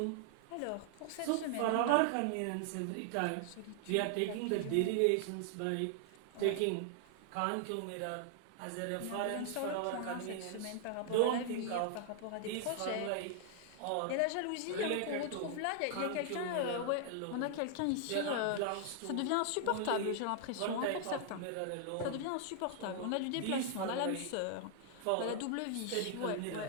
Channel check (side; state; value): both; different; correlation 0.00